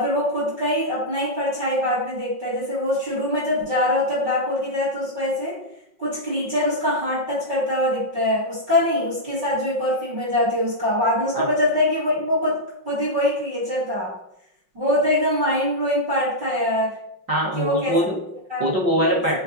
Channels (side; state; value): left; late; 5.5 ms